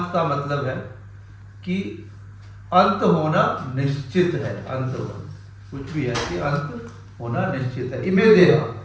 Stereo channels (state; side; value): identical; both; correlation 1.00